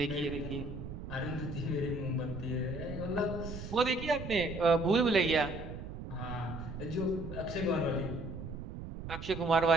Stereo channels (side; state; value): right; noise; rumble, 9 dB below the sound